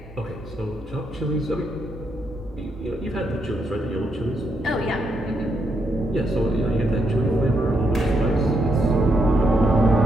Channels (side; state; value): both; normal; correlation 0.79